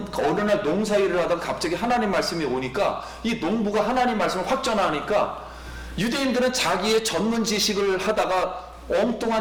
어느 날 농사일을 하다가 갑자기 하나님 말씀이 오니까 이 농부가 하나님 말씀을 확 전하니까 유대인들은 자기의 전문 지식을 하다가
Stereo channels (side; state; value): both; identical; correlation 1.00